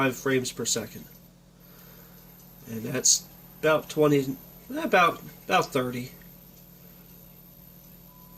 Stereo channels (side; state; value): both; identical; correlation 1.00